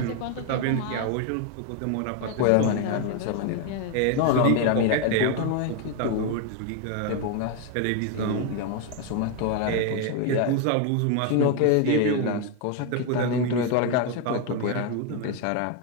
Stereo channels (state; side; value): different; both; correlation 0.01